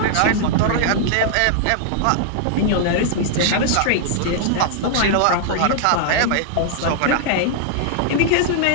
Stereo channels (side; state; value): both; different; correlation -0.01